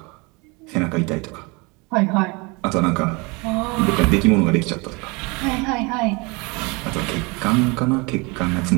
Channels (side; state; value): left; quieter; 28.0 dB